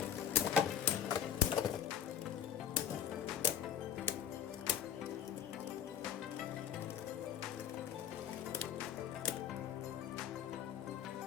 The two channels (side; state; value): right; quieter; 9.0 dB